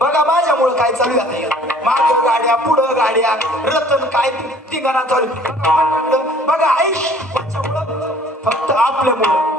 बघा माझ्यामुळे काय चालू आहे. मागं गाड्या पुढं गाड्या रतन काय तिघांना चालू. बघा आयुष फक्त आपल्यामुळं.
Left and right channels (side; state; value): both; normal; correlation 0.53